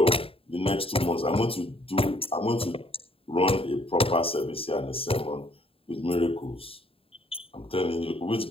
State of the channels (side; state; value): right; late; 0.27 ms